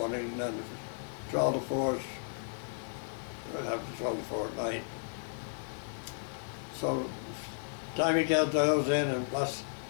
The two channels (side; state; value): right; silent; digital silence